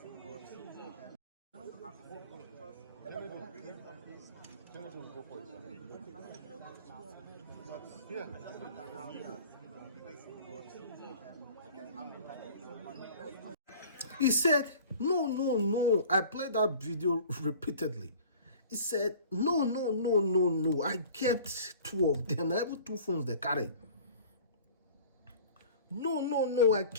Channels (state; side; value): inverted; both; correlation -0.45